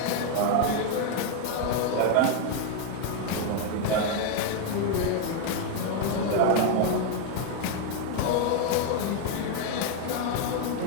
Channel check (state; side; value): different; both; correlation 0.01